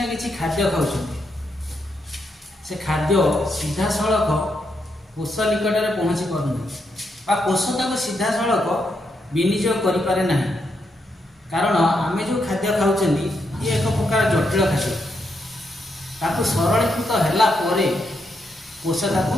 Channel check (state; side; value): normal; both; correlation 0.80